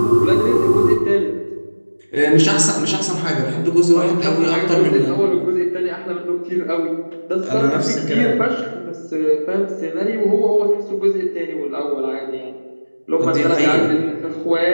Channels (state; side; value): inverted; both; correlation -1.00